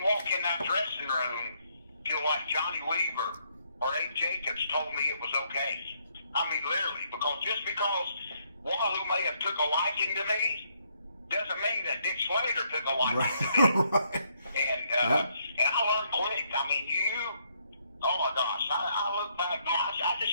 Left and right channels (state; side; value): inverted; both; correlation -0.73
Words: walk in that dressing room till like Johnny Weaver or Abe Jacobs told me it was okay. I mean, literally, just because Wahoo may have took a liking to me doesn't mean that Dick Slater took a liking to me. And I learned quick. I mean, oh my gosh, I look back now. I